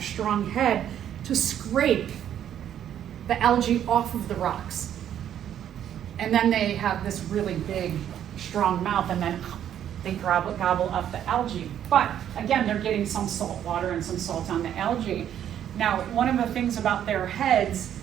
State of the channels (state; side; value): quieter; left; 10.2 dB